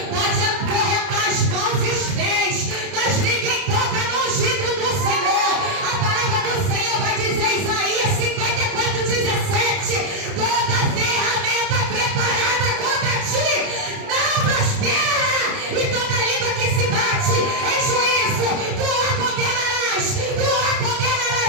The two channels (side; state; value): left; late; 30 ms